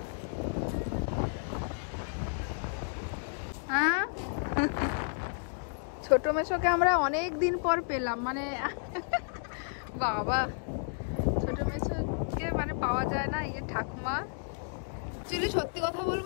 হ্যাঁ, ছোট মেশোকে আমরা অনেক দিন পর পেলাম, মানে বাবা ছোট মেশোকে মানে পাওয়া যায় না। এই ঠাকুমা অ্যাকচুয়ালি সত্যি কথা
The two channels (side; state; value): right; silent; digital silence